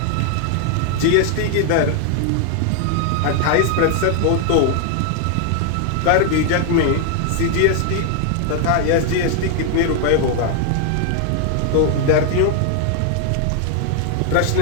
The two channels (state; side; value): different; both; correlation 0.00